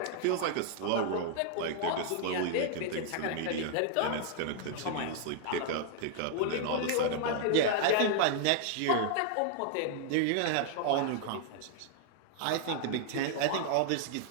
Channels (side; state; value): both; different; correlation -0.01